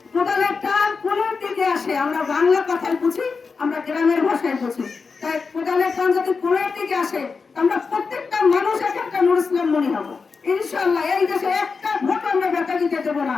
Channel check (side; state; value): right; quieter; 4.9 dB